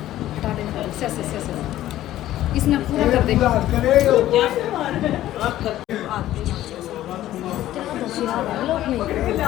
इसने पूरा कर दे।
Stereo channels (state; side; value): quieter; right; 13.8 dB